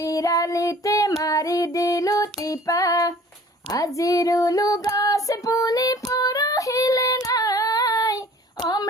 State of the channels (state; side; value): normal; both; correlation 0.49